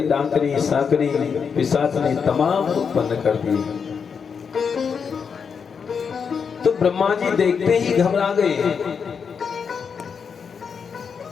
डाकनी साकनी पिशाचनी तमाम उत्पन्न कर दी। तो ब्रह्मा जी देखते ही घबरा गए।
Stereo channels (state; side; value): quieter; right; 6.3 dB